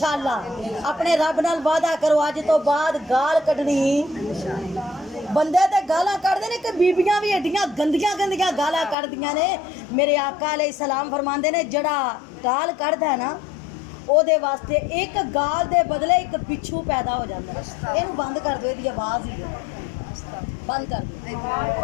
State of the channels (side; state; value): right; drops out; at 9.0 s